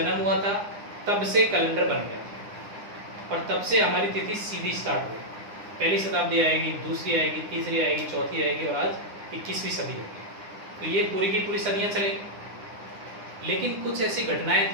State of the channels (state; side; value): late; left; 9.9 ms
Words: हुआ था तब से कैलेंडर बन गया और तब से हमारी तिथि सीधी स्टार्ट हुई। पहली शताब्दी आएगी, दूसरी आएगी, तीसरी आएगी, चौथी आएगी और आज 21वीं सदी होगी। तो ये पूरी की पूरी सदियां चलेगी। लेकिन कुछ ऐसी घटनाएं